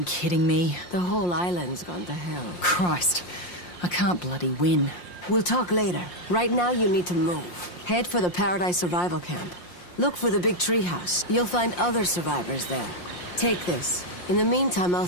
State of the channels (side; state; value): right; late; 5.7 ms